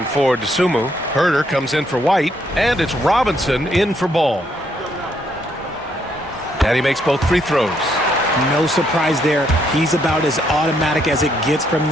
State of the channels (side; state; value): both; normal; correlation 0.73